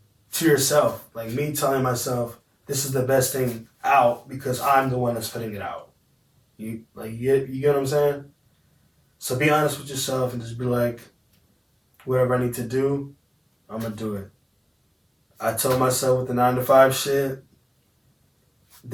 to yourself. Like me telling myself, this is the best thing out because I'm the one that's putting it out. You get what I'm saying? So be honest with yourself and just be like, whatever I need to do, I'm going to do it. I told myself with the 9-to-5 shit,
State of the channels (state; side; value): identical; both; correlation 1.00